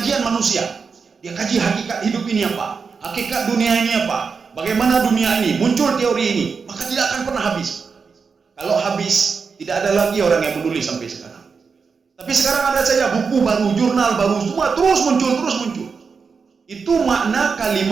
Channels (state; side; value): quieter; left; 5.4 dB